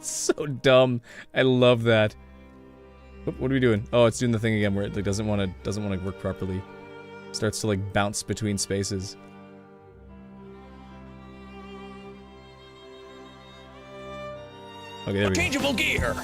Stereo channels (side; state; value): both; identical; correlation 1.00